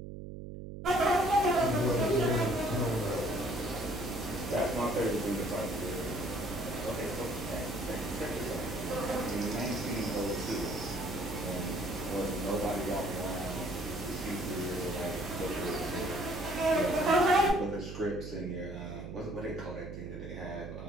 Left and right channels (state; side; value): noise; right; hum, 9 dB below the sound